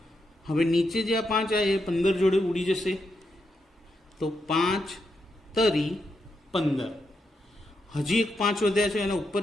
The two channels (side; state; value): both; normal; correlation 0.83